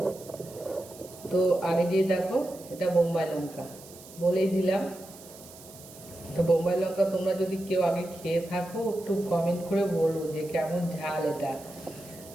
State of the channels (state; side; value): noise; right; hiss, 19 dB below the sound